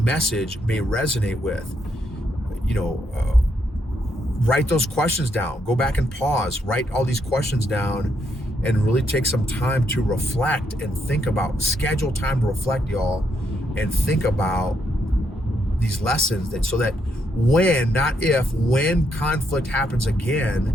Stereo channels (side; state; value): both; normal; correlation 0.76